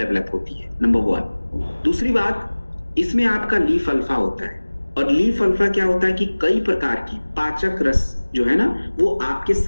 होती है, नंबर 1। दूसरी बात, इसमें आपका लीफ अल्फा होता है, और लीफ अल्फा क्या होता है कि कई प्रकार की पाचक रस जो है ना वो आपके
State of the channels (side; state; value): both; inverted; correlation -1.00